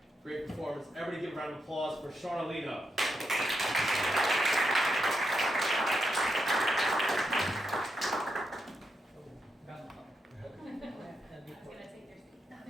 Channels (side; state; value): both; normal; correlation 0.84